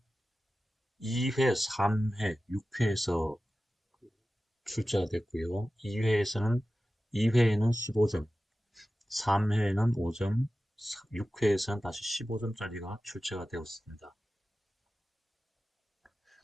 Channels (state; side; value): normal; both; correlation 0.95